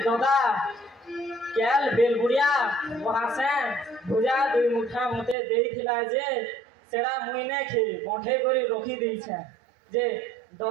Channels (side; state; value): left; drops out; at 5.4 s